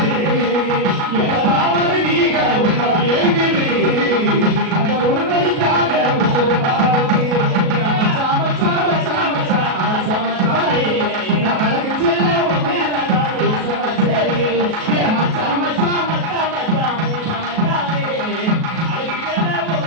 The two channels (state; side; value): late; left; 37 ms